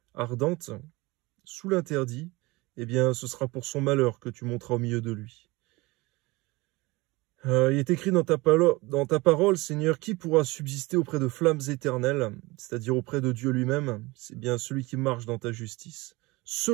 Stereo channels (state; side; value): quieter; left; 22.8 dB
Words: ardente, sous l'interdit, eh bien ce sera pour son malheur que tu monteras au milieu de lui. Il est écrit dans ta parole, Seigneur, qui pourra subsister auprès de flammes éternelles, c'est-à-dire auprès de Dieu lui-même? C'est bien celui qui marche dans ta justice,